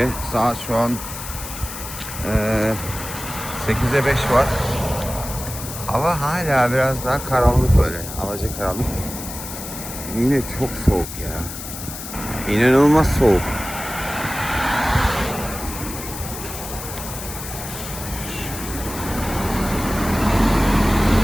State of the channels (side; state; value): left; noise; hiss, 10 dB below the sound